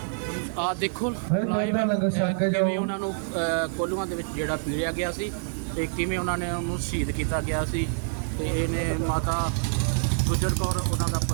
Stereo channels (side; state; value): left; silent; digital silence